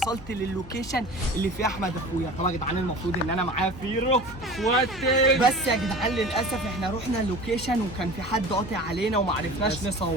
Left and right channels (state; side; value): normal; both; correlation 0.38